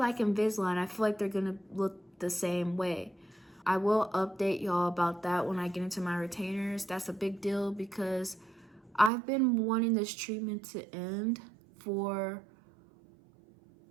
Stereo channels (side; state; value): left; drops out; at 9.1 s